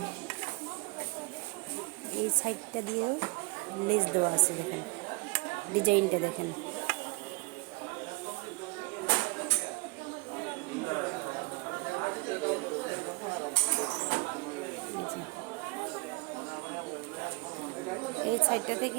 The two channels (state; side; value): quieter; left; 28.5 dB